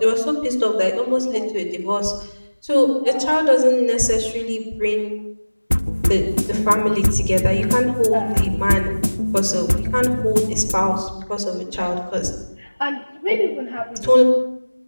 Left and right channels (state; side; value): inverted; both; correlation -1.00